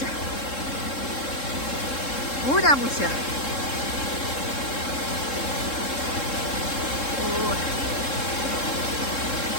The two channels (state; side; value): late; right; 3.7 ms